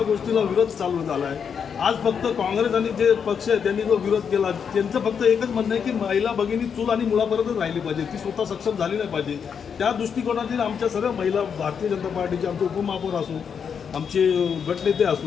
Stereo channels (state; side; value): quieter; right; 6.9 dB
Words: गोष्टीला विरोध चालू झाला आहे. आज फक्त काँग्रेस आणि जे पक्ष आहे त्यांनी जो विरोध केला त्यांचं फक्त एकच म्हणणं आहे की महिला भगिनी चूल आणि मुलापर्यंतच राहिली पाहिजे, ती स्वतः सक्षम झाली नाही पाहिजे. त्या दृष्टिकोनातील आमच्या सगळ्या महिला भारतीय जनता पार्टीचे आमचे उपमहापौर असो, आमचे गटनेते